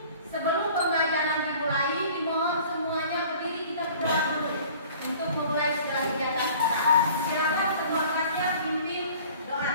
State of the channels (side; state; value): both; inverted; correlation -0.48